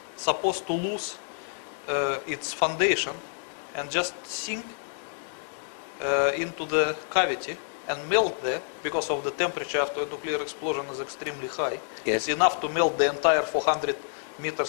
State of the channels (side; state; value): right; silent; 59 dB below the other